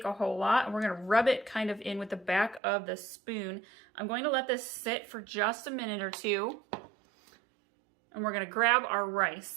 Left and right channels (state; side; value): drops out; left; at 2.6 s